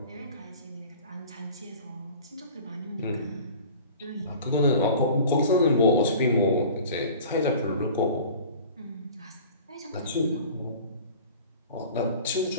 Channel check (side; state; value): both; inverted; correlation -0.42